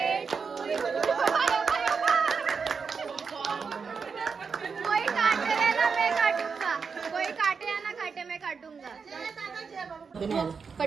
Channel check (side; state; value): left; quieter; 5.5 dB